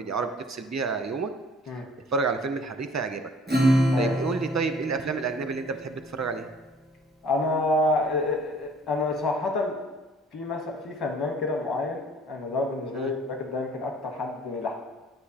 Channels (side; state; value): both; normal; correlation 0.53